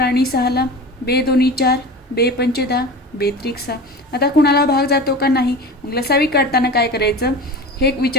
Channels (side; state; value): both; normal; correlation 0.33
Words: आणि 6ला. बे दोन्ही 4, बे पंचे 10, बे त्रिक 6. आता कुणाला भाग जातो का नाही? मग लसावी काढताना काय करायचं? हे